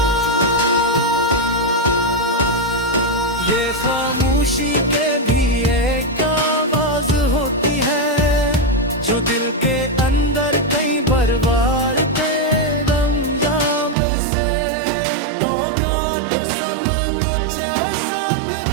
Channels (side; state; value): left; drops out; at 14.0 s